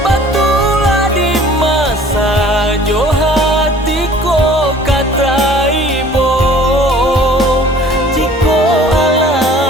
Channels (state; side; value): normal; both; correlation 0.51